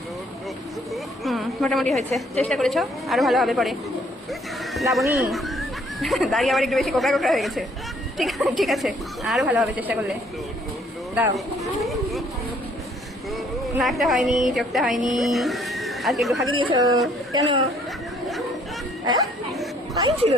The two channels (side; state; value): both; normal; correlation 0.63